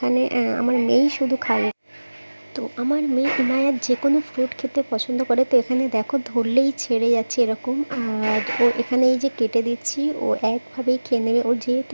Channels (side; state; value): both; inverted; correlation -1.00